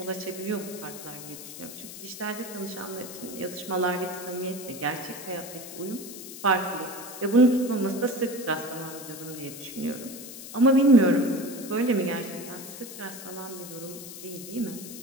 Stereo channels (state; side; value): noise; left; hiss, 12 dB below the sound